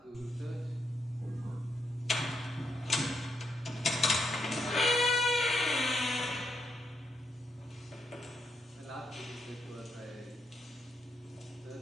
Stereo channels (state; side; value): normal; both; correlation 0.79